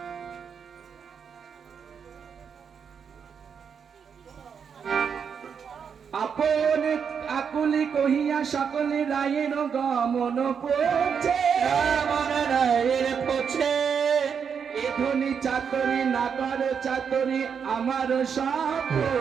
আপন আকুলি কহিয়া সকলে রায়ের গমন পড়ছে, আমার রায়ের পছে এ ধ্বনি চাতরি নাগর চাতরি আমার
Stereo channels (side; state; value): left; quieter; 6.9 dB